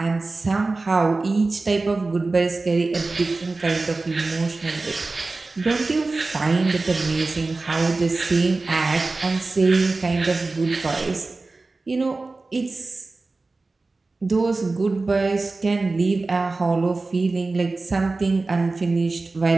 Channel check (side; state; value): left; quieter; 3.5 dB